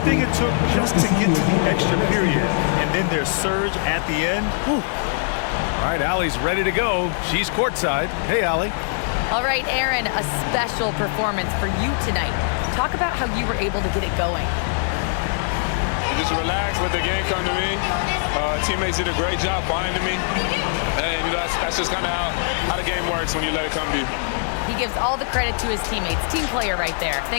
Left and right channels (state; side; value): silent; right; digital silence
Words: it took just to get to the extra period, and then their surge at the end. Whew. All right, Allie's ready to go. She's courtside. Hey, Allie. All right, Aaron, a special performance for you tonight. Talk about how you were able to get it going. Just relax, let the game come to me. Teammates did a great job binding me. And you know, that's just kind of how the game works when you let it come to you. He gives all the credit to his teammates. Team player right there.